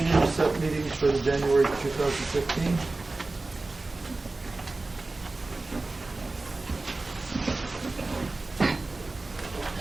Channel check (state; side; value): quieter; left; 3.3 dB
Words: set meetings for the January 2015.